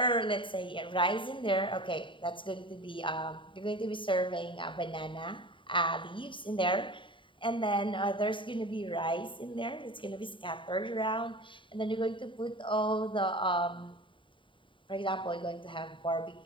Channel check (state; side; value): late; right; 0.24 ms